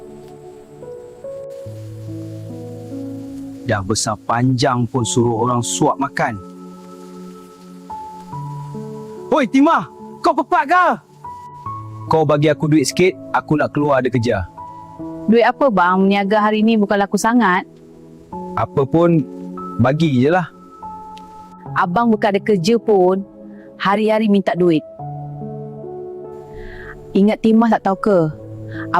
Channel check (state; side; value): identical; both; correlation 1.00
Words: Dah besar panjang pun suruh orang suap makan. Hoi Timah, kau pepat ke? Kau bagi aku duit sikit, aku nak keluar ada kerja. Duit apa bang? Meniaga hari ni bukan laku sangat. Apa pun, bagi je lah. Abang bukan ada kerja pun, hari-hari minta duit. Ingat Timah tak tahu ke?